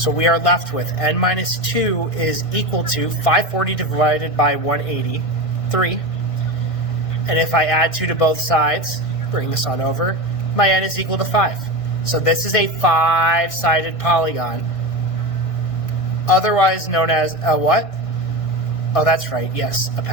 we are left with n minus 2 is equal to 540 divided by 180, 3. And if I add 2 to both sides, bring this on over, my n is equal to 5. So this is a 5-sided polygon, otherwise known as a what? Oh, that's right, yes, a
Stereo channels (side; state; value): right; late; 1.5 ms